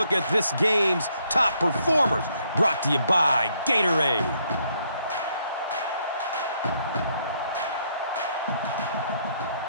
at this game's top performers, brought to you by Gatorade.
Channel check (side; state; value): both; inverted; correlation -0.71